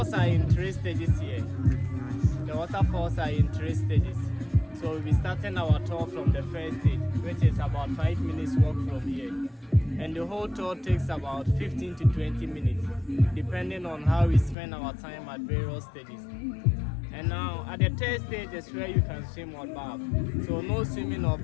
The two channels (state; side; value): drops out; right; at 14.6 s